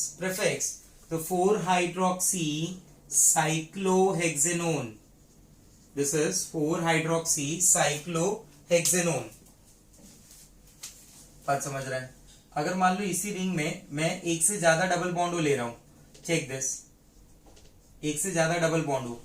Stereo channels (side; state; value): both; identical; correlation 1.00